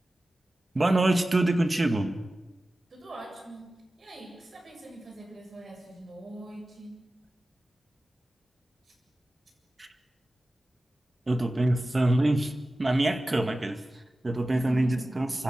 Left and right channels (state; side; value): normal; both; correlation 0.95